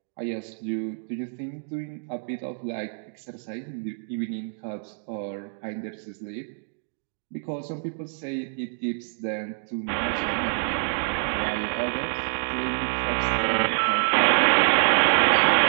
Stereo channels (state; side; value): silent; left; digital silence